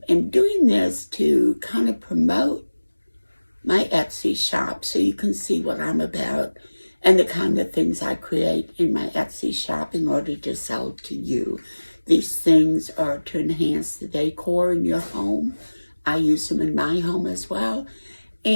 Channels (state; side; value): inverted; both; correlation -1.00